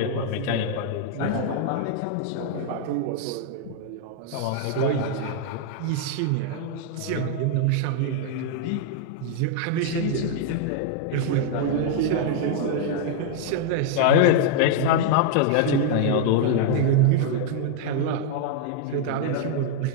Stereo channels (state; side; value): different; both; correlation -0.01